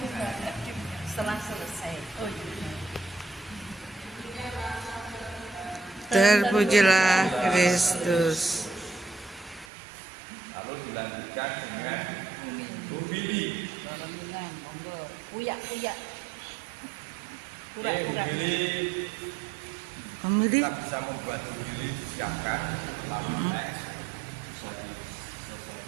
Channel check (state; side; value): drops out; left; at 9.7 s